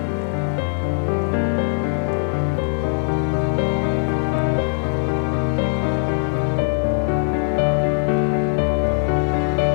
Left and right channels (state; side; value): silent; right; digital silence